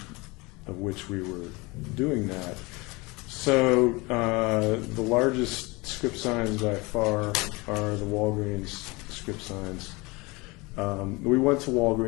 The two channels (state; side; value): quieter; right; 25.0 dB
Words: of which we were doing that. So the largest script signs by far are the Walgreens script signs. We went to